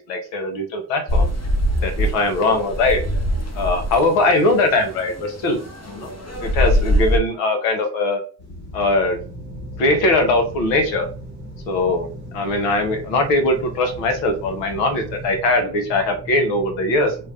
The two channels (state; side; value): normal; both; correlation 0.19